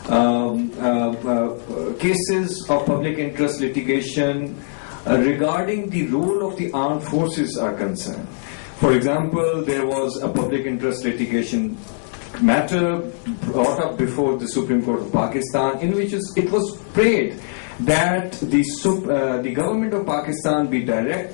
cases of public interest litigation regarding the role of the armed forces are concerned. For example, there was a public interest litigation matter brought up before the Supreme Court of Pakistan, in which it was prayed that the government of Pakistan be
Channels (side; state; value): right; silent; digital silence